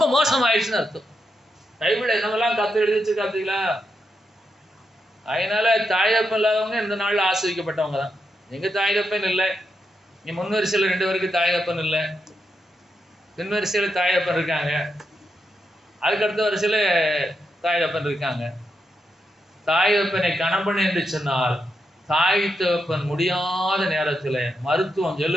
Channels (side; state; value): both; normal; correlation 0.83